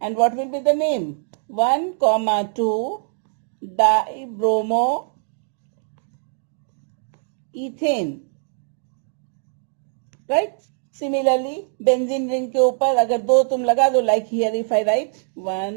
And what will be the name? 1, 2 dibromoethane. Right? Similarly, benzene ring के ऊपर अगर 2 तुम लगा दो, like here if I write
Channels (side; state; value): left; silent; digital silence